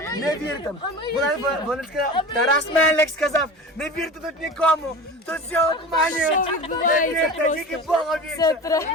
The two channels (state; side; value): normal; both; correlation 0.34